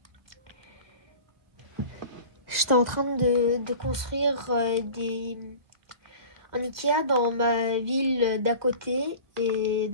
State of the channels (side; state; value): left; late; 1.8 ms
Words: j'étais en train de construire un Ikea dans ma ville d'à côté. Et